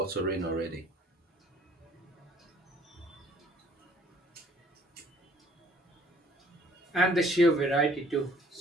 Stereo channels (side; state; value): both; normal; correlation 0.58